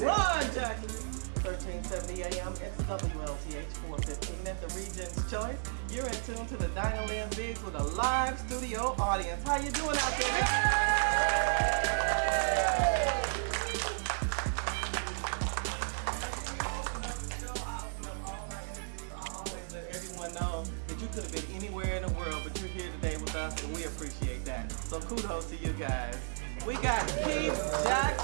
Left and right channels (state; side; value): silent; left; digital silence